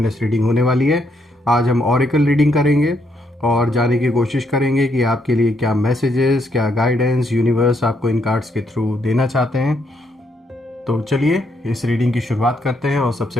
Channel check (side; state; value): both; normal; correlation 0.75